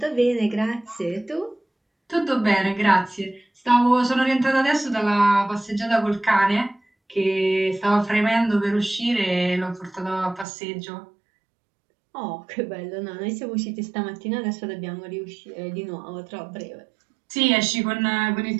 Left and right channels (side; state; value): left; drops out; at 10.5 s